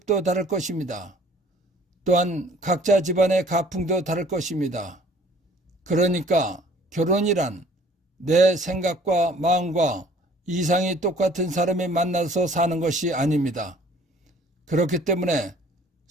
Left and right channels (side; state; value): both; normal; correlation 0.54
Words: 다를 것입니다. 또한 각자 집안의 가풍도 다를 것입니다. 그러니까 결혼이란 내 생각과 마음과 이상이 똑같은 사람이 만나서 사는 것이 아닙니다. 그렇기 때문에